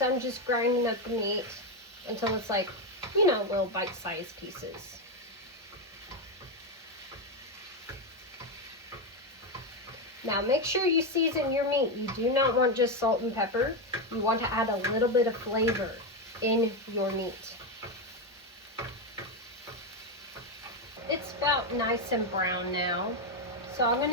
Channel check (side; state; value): both; normal; correlation 0.08